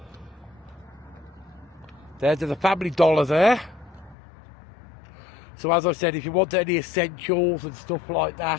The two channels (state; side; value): drops out; right; at 4.2 s